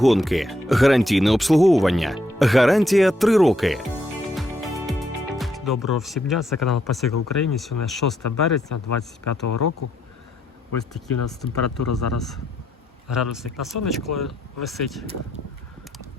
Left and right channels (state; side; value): normal; both; correlation 0.76